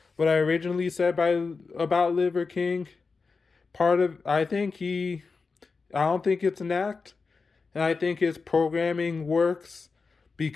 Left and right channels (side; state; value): right; quieter; 4.5 dB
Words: what I originally said about Liver King, part of I don't think it's an act, and I think his programming works